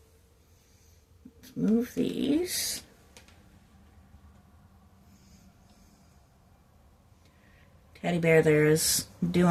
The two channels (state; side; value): identical; both; correlation 1.00